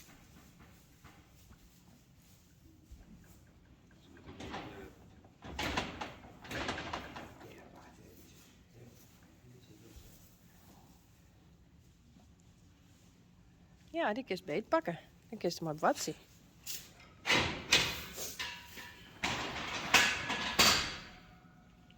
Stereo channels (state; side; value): identical; both; correlation 1.00